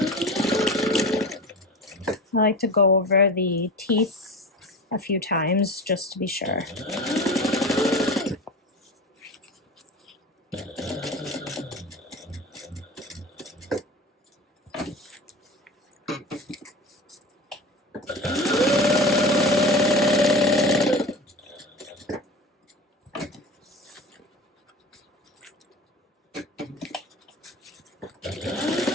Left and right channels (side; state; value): both; normal; correlation 0.32